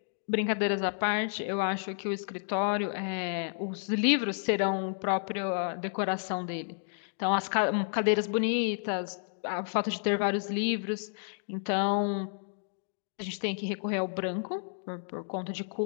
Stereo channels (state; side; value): silent; right; digital silence